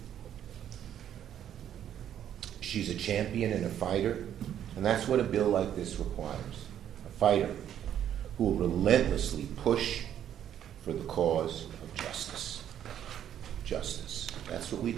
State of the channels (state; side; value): quieter; left; 10.2 dB